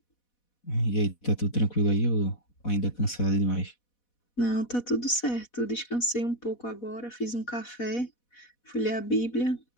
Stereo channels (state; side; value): late; right; 4.1 ms